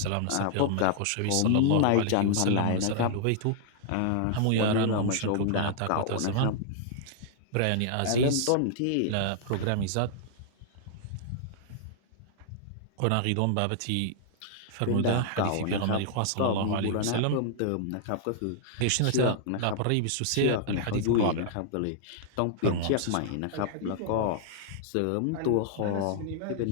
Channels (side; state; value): both; different; correlation -0.01